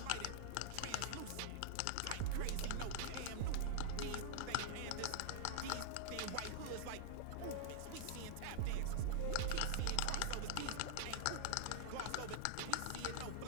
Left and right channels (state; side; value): different; both; correlation -0.01